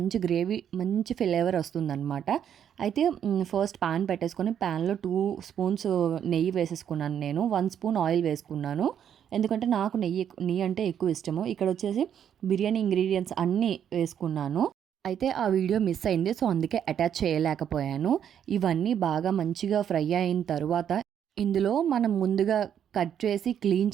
గ్రేవీ, మంచి ఫ్లేవర్ వస్తుందన్నమాట. అయితే ఫస్ట్ ప్యాన్ పెట్టేసుకొని ప్యాన్లో 2 స్పూన్స్ నెయ్యి వేసేసుకున్నాను. నేను 1 స్పూన్ ఆయిల్ వేసుకున్నాను. ఎందుకంటే నాకు నెయ్యి అంటే ఎక్కువ ఇష్టము. ఇక్కడ వచ్చేసి బిర్యానీ ఇంగ్రీడియంట్స్ అన్నీ వేసుకున్నాను. అయితే ఆ వీడియో మిస్ అయింది, సో అందుకే అటాచ్ చేయలేకపోయాను. ఇవన్నీ బాగా మంచిగా ఫ్రై అయిన తర్వాత ఇందులో మనం ముందుగా కట్ చేసి క్లీన్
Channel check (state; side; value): quieter; left; 9.1 dB